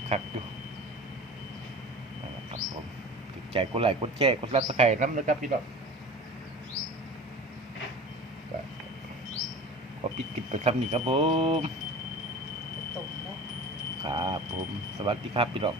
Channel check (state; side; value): normal; both; correlation 0.37